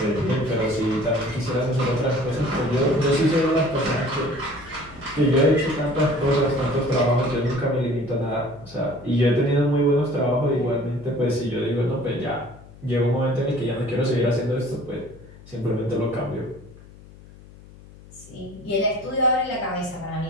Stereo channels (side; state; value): left; noise; hum, 21 dB below the sound